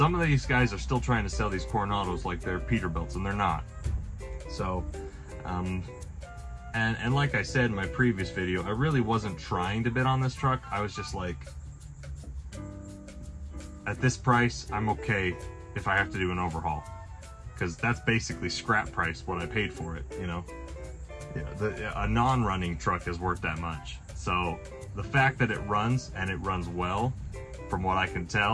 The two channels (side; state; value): both; identical; correlation 1.00